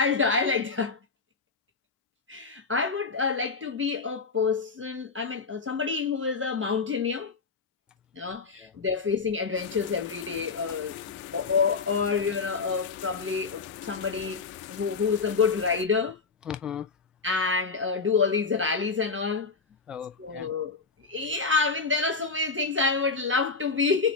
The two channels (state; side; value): quieter; right; 4.7 dB